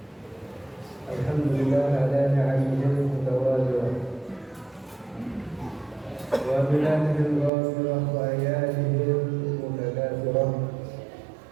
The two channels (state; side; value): drops out; left; at 7.5 s